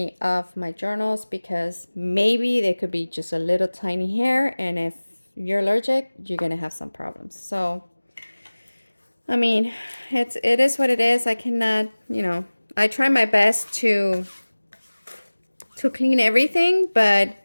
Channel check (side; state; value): both; inverted; correlation -1.00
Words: of my journals, because maybe they could be just a little tiny hair, and if you're allergic, you're gonna have some problems. So I mean, it is what it is. I cannot, you know, I try my best to clean everything, but